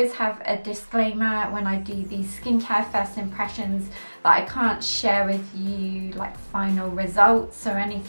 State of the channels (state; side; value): inverted; both; correlation -1.00